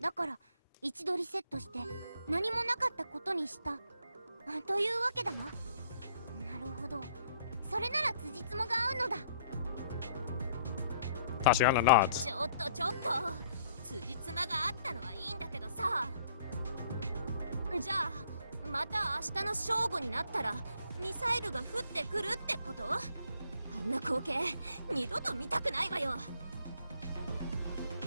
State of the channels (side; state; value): both; inverted; correlation -0.63